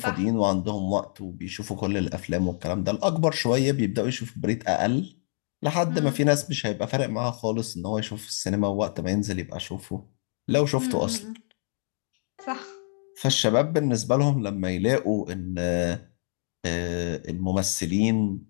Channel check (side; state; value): right; silent; 60 dB below the other